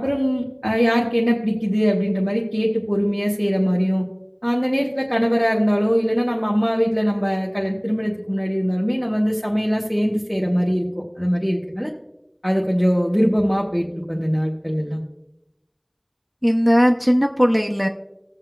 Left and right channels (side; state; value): both; identical; correlation 1.00